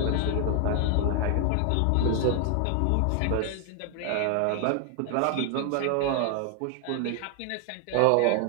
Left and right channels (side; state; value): both; different; correlation 0.00